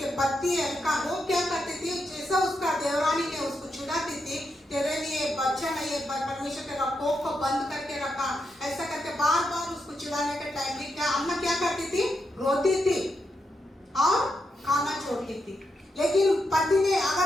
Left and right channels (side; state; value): both; normal; correlation 0.83